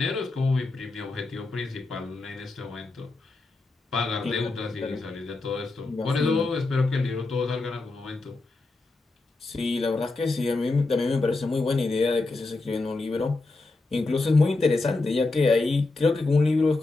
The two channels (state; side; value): quieter; right; 3.4 dB